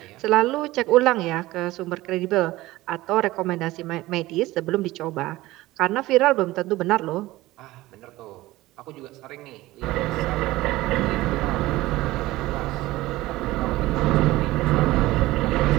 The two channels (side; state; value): left; quieter; 18.0 dB